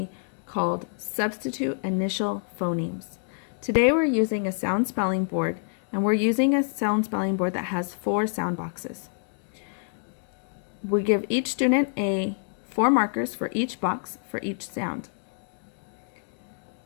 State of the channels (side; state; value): right; silent; digital silence